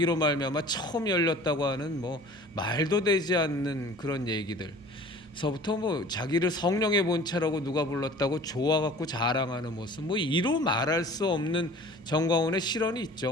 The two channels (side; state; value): both; normal; correlation 0.45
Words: 말미암아 처음 열렸다고 하는 뭐 말도 되지 않는 그런 얘기들. 서부터 뭐 자기를 성령의 본체라고 누가 불렀다고 좋아갖고 자랑하는 모습, 뭐 이로 말할 수 없는 전광훈의 실언이